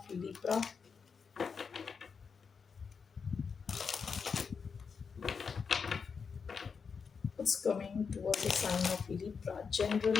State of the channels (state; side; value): quieter; right; 5.7 dB